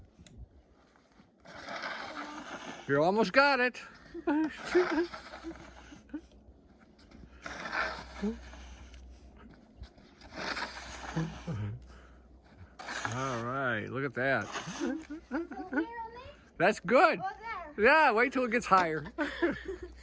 You almost got it. All right, look at that. That's good. Yeah, wait till it gets higher.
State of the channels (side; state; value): both; identical; correlation 1.00